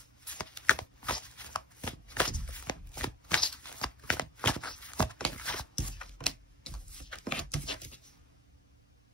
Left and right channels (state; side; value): normal; both; correlation 0.40